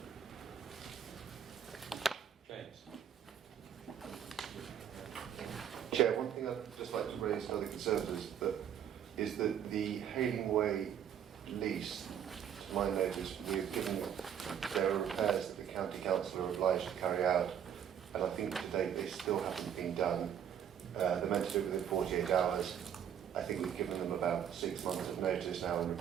James. Chair, one thing I'd just like to raise to the Conservators is that the Hailing Way lease, to my notice, we've given there are repairs that the County Council are obliged to carry out, and I think to date they still haven't been done. They're meant to do it within 48 hours. I think we've given them about 6 months of notice now and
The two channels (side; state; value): left; quieter; 9.0 dB